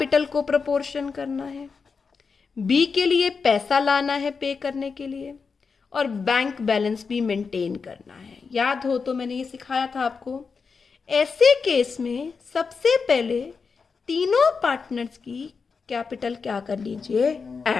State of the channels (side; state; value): right; quieter; 5.2 dB